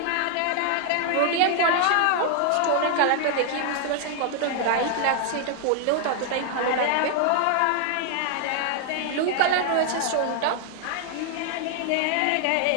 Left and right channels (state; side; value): different; both; correlation 0.00